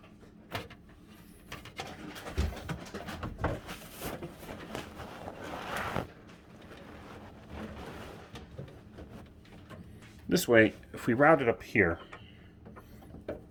This way, if we route it up here,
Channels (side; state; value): both; identical; correlation 1.00